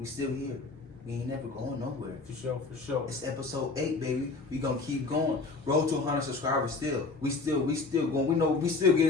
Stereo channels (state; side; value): quieter; right; 3.9 dB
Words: still here. We ain't never going nowhere. For sure. It's episode 8, baby. We gonna keep going. Road to 100 subscribers still. We still going. We know we still